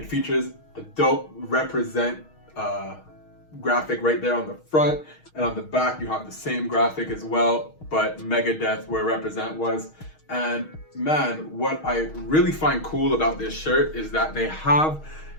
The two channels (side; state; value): right; late; 6.4 ms